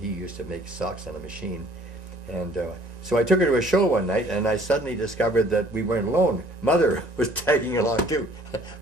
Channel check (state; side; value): late; left; 1.9 ms